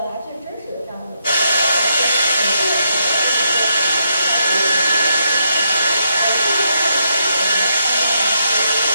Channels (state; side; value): inverted; both; correlation -0.79